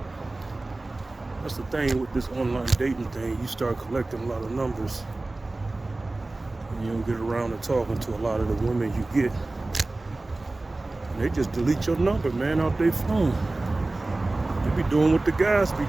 that's the thing with this online dating thing. You start collecting a lot of numbers, and you don't get around to talking to a lot of the women you get. And they just delete your number, man, out their phone. They be doing what the guys be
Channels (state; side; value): quieter; left; 3.0 dB